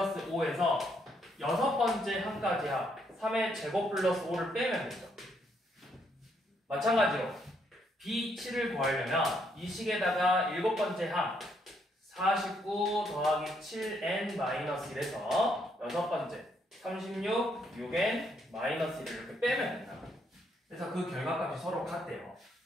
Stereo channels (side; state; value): both; normal; correlation 0.73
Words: 5에서 6번째 항까지 합 3의 제곱 플러스 5를 빼면 되죠. 마찬가지로 B7을 구하려면 이 식에다가 7번째 항 49 더하기 7n-1에서 6번째 36, 6n-1을 이렇게 빼면 된다. 그래서 그 결과값이 서로 같대요.